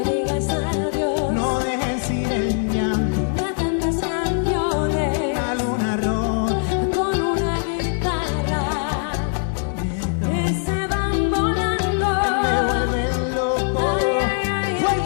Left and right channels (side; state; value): right; silent; digital silence